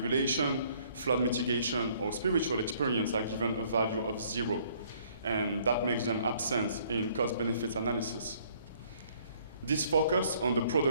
flood mitigation, or spiritual experience are given a value of 0, and that makes them absent in cost-benefit analysis. This focus on the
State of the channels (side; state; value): both; inverted; correlation -0.61